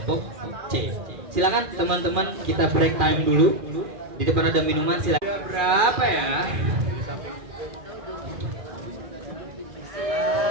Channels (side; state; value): left; late; 2.4 ms